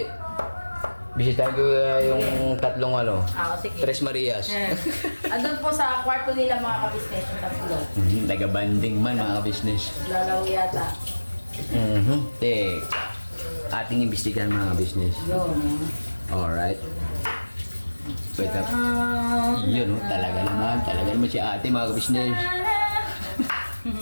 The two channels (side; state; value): both; inverted; correlation -1.00